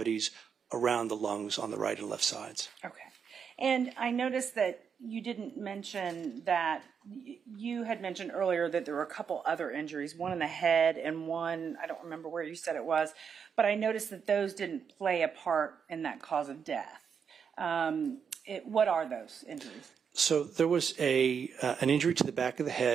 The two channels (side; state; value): left; quieter; 6.8 dB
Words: around the lungs on the right and left sides. Okay. And I noticed that you didn't mention that, you had mentioned earlier that there were a couple other injuries, one in the head and one, I don't remember where you said it was, but I noticed that those didn't play a part in that cause of death. What are those injuries? So there was an injury to the back of the